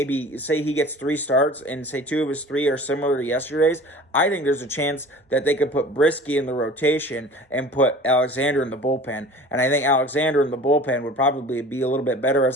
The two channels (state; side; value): normal; both; correlation 0.42